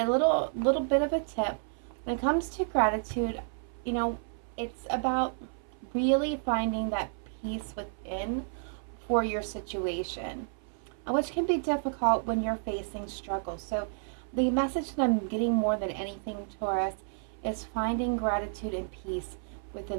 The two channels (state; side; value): silent; left; 57 dB below the other